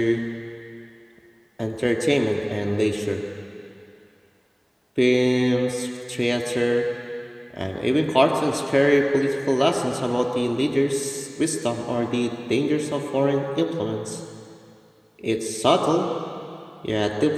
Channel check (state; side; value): identical; both; correlation 1.00